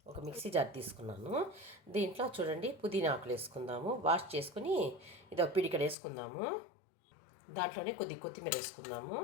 ఒక మిక్సీ జార్ తీసుకున్నాను. దీంట్లో చూడండి, పుదీనా ఆకులు వేసుకుందాము. వాష్ చేసుకుని ఇది ఒక పిడికెడు వేసుకుందాము. దాంట్లోనే కొద్దిగా కొత్తిమీర వేసుకుందాము.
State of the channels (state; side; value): drops out; right; at 6.0 s